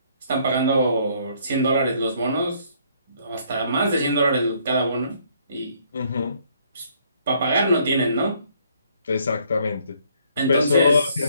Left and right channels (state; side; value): inverted; both; correlation -0.65